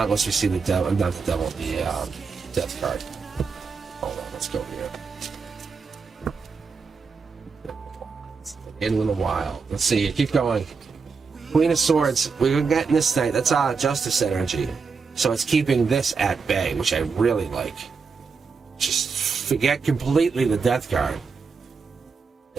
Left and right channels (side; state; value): left; quieter; 5.1 dB